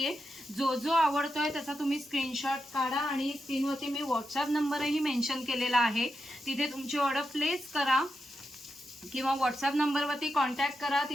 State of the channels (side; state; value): both; normal; correlation 0.87